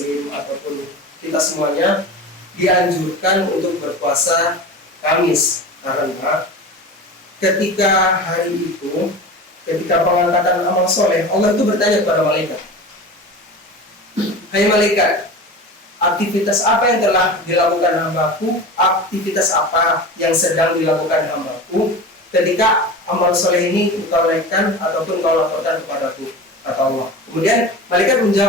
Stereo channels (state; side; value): normal; both; correlation 0.31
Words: ataupun kita semuanya dianjurkan untuk berpuasa Kamis, karena ketika hari itu, ketika pengangkatan amal soleh, Allah itu bertanya kepada malaikat, "Hai malaikat, aktivitas apa yang telah dilakukan hambaku, aktivitas apa yang sedang dilakukan hambaku ketika amal soleh ini engkau naikkan ataupun engkau laporkan kepadaku," kata Allah. Kemudian malaikat